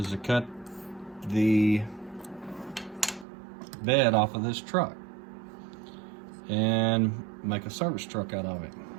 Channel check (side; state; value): left; drops out; at 3.2 s